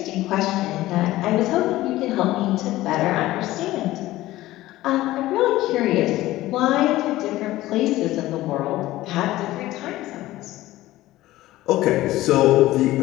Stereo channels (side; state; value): right; quieter; 16.4 dB